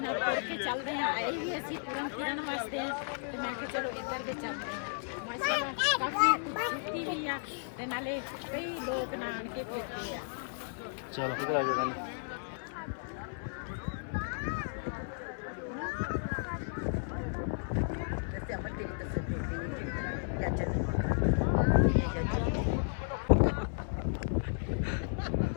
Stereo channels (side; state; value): right; silent; 55 dB below the other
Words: ਤੁਰ ਕੇ ਚੱਲਦੇ ਹਾਂ, ਆਏ ਵੀ ਅਸੀਂ ਤੁਰਨ ਫਿਰਨ ਵਾਸਤੇ ਆ, ਤੇ ਮੈਂ ਕਿਹਾ ਚਲੋ ਇੱਧਰ ਦੇ ਚੱਲਦੇ ਹਾਂ। ਮਾਸ਼ਾਅੱਲਾ ਕਾਫੀ ਖੂਬਸੂਰਤੀ ਵੀ ਆ, ਤੇ ਨਾਲੇ ਕਈ ਲੋਕ ਨਾਣ ਕੇ ਫਿਰਦੇ ਆ। ਚਲੋ ਕਿਧਰ ਆ ਜਾਣਾ।